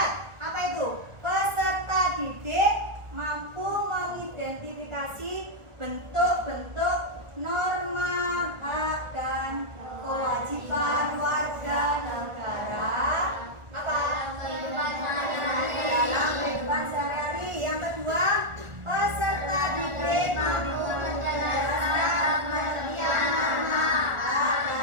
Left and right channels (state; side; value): late; left; 1.4 ms